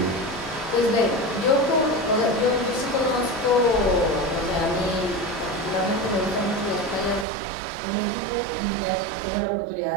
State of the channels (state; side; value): drops out; left; at 7.2 s